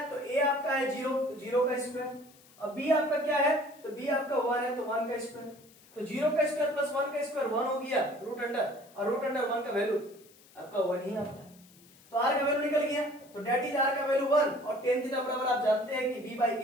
तो a आपका है 0, तो 0 का स्क्वायर, और b आपका क्या है, तो b आपका 1 है तो 1 का स्क्वायर, तो 0 का स्क्वायर प्लस 1 का स्क्वायर 1 हो गया रूट अंडर, और रूट अंडर 1 का वैल्यू आपका 1 ही आता है, तो r का वैल्यू निकल गया, तो डेट इज r का वैल्यू 1, और tan थीटा बराबर आप जानते हैं कि b बाई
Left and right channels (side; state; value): left; noise; hiss, 26 dB below the sound